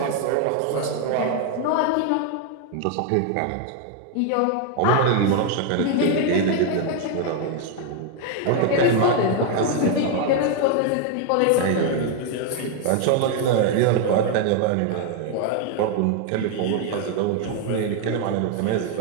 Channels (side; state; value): both; different; correlation 0.01